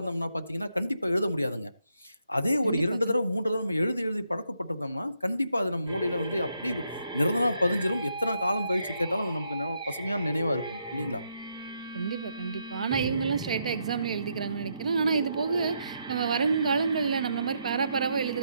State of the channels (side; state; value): both; inverted; correlation -0.78